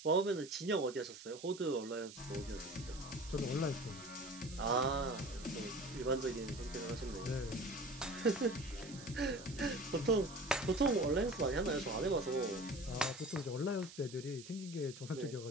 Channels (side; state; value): right; noise; hiss, 15 dB below the sound